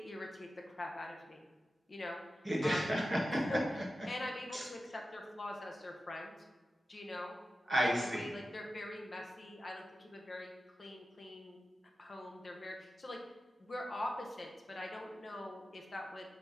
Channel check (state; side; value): normal; both; correlation 0.93